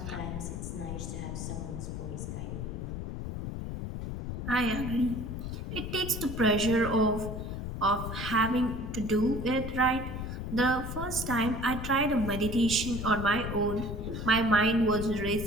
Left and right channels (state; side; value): noise; left; rumble, 5 dB below the sound